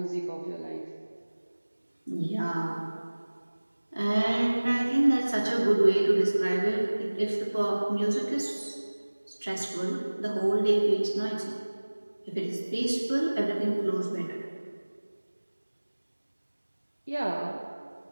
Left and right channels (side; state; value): both; inverted; correlation -1.00